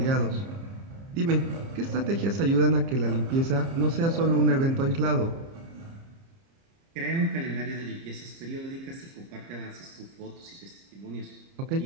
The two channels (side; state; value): left; late; 30 ms